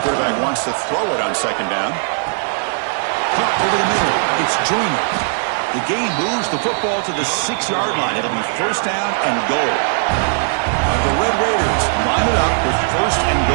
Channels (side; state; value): left; silent; digital silence